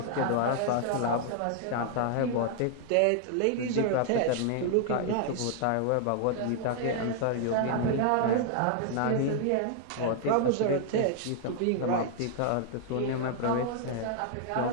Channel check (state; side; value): different; both; correlation 0.00